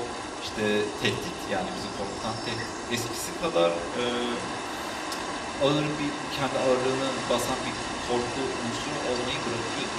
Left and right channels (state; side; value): identical; both; correlation 1.00